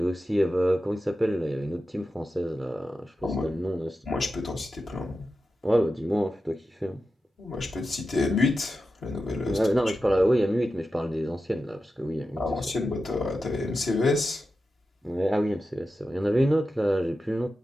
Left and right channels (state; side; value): normal; both; correlation 0.91